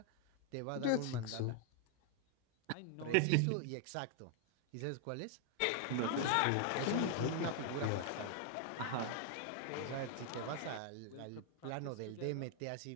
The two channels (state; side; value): different; both; correlation 0.00